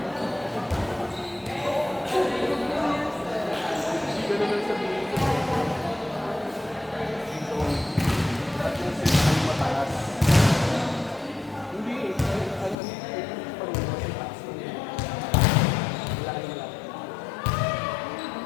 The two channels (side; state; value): right; drops out; at 12.8 s